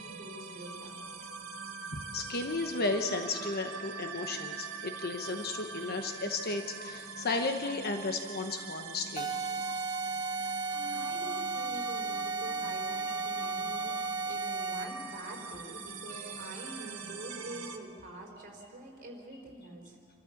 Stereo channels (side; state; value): both; normal; correlation 0.02